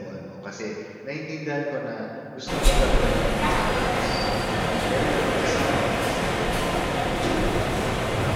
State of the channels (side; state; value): both; identical; correlation 1.00